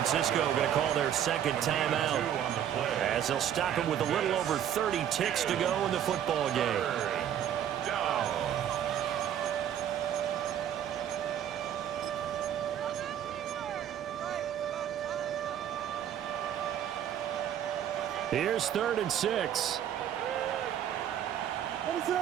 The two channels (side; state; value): left; quieter; 10.0 dB